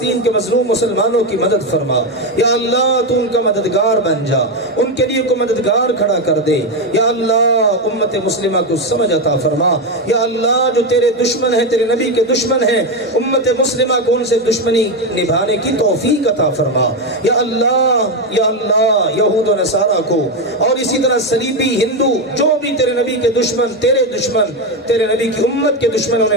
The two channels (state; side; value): normal; both; correlation 0.10